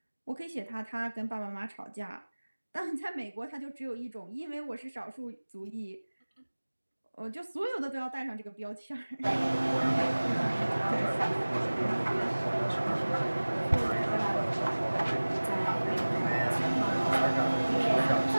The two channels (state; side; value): inverted; both; correlation -1.00